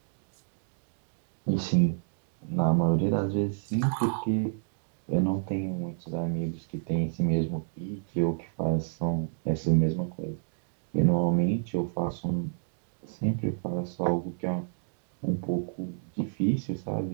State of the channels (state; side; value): silent; left; digital silence